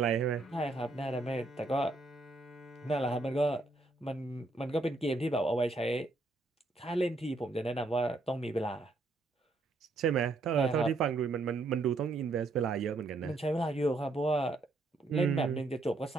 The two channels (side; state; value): left; quieter; 3.1 dB